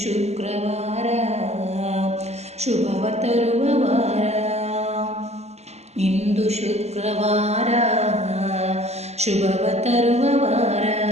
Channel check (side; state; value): left; late; 0.31 ms